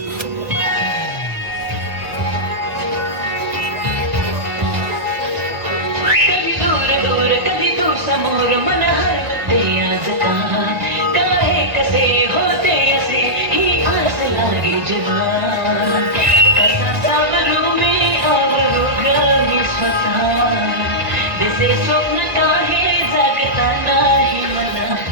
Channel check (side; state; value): left; late; 1.4 ms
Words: कधी दूर दूर कधी तू समोर मन हरवते आज का काय कसे होते असे ही आस लागे जेव्हा कसा सावरू मी आवरू ग मी स्वतः दिसे स्वप्न काही जागता नाही मला